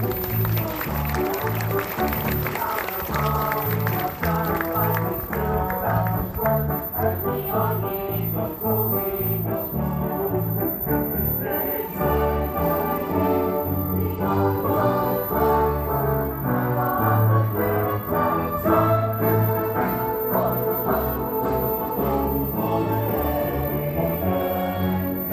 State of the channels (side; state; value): both; identical; correlation 1.00